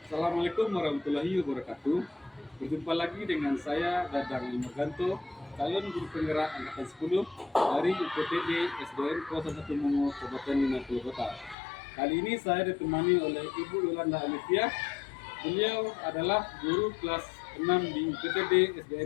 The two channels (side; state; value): right; drops out; at 11.6 s